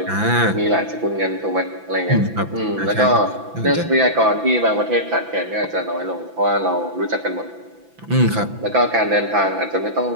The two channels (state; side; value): late; left; 6.0 ms